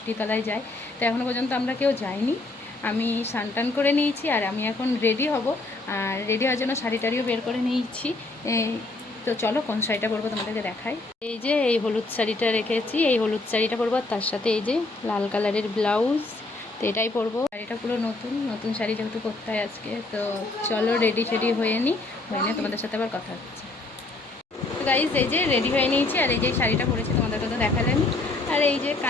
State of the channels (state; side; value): quieter; right; 3.1 dB